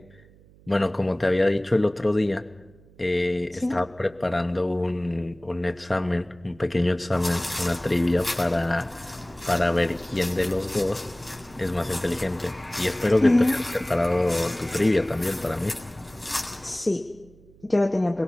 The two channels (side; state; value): right; noise; hum, 26 dB below the sound